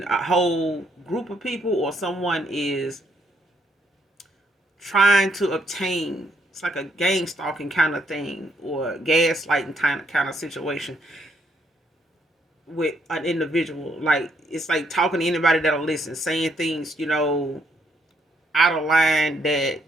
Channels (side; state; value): both; normal; correlation 0.72